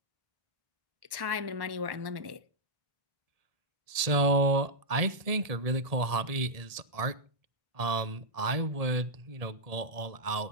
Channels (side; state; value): left; late; 1.7 ms